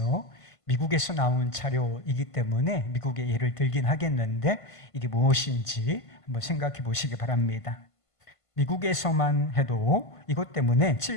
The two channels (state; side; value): late; right; 1.5 ms